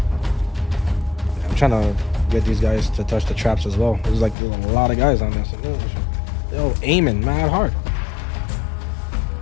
I'm trying to get these guys to touch the traps as well. There's a lot of guys on this. They're aiming mad hard.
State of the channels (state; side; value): drops out; right; at 4.4 s